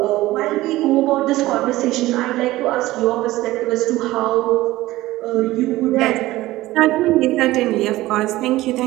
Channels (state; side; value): quieter; left; 17.2 dB